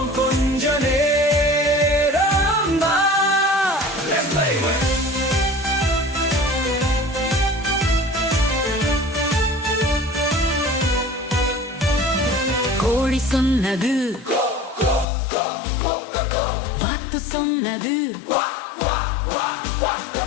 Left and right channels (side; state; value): right; drops out; at 15.1 s